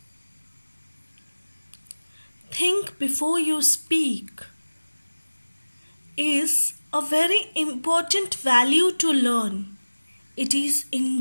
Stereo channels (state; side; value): inverted; both; correlation -1.00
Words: Think before you speak is a very important value to learn. It is